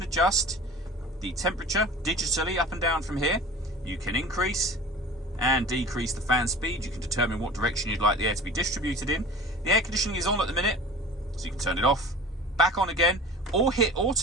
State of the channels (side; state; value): both; normal; correlation 0.39